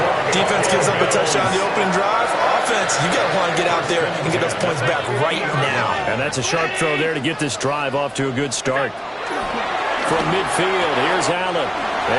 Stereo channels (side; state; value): both; identical; correlation 1.00